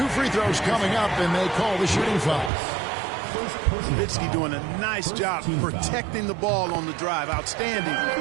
2 free throws coming up, and they call the shooting foul. Nowitzki doing a nice job protecting the ball on the drive. Outstanding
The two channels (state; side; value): drops out; left; at 2.5 s